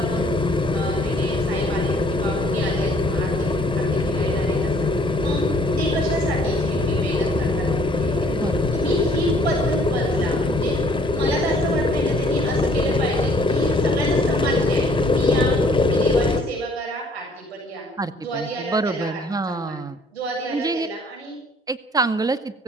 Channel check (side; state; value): both; normal; correlation 0.60